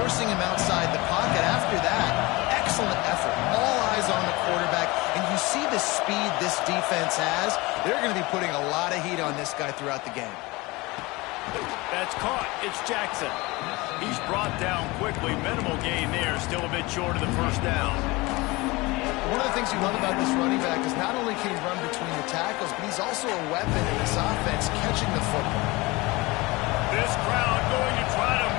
him outside the pocket. After that, excellent effort. All eyes on the quarterback. And you see the speed this defense has. They're going to be putting a lot of heat on this guy throughout the game. That's caught. It's Jackson. He's brought down quickly. Minimal gain there. Still a bit short of the first down. One of the things you love about this running back is not only can he run between the tackles, but he's also a weapon in this offense catching the football. This crowd going to try to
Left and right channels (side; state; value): right; quieter; 22.9 dB